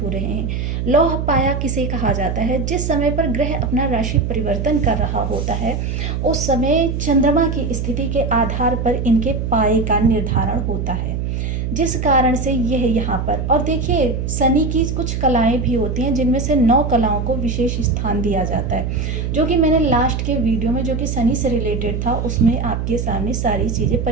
हो रहे हैं। लौह पाया किसे कहा जाता है? जिस समय पर ग्रह अपना राशि परिवर्तन कर रहा होता है उस समय चंद्रमा की स्थिति के आधार पर इनके पाए का निर्धारण होता है, जिस कारण से यह यहाँ पर, और देखिए शनि की कुछ कलाएं भी होती हैं जिनमें से 9 कलाओं को विशेष स्थान दिया जाता है, जो कि मैंने लास्ट के वीडियो में जो कि शनि से रिलेटेड था उसमें आपके सामने सारी चीज़ें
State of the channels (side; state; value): right; noise; hum, 2 dB below the sound